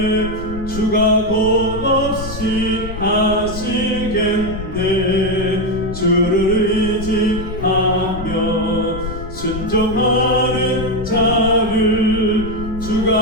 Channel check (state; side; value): noise; left; rumble, 9 dB below the sound